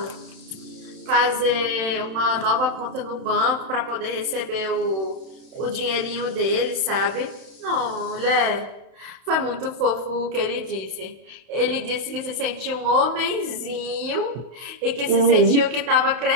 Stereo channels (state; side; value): late; left; 31 ms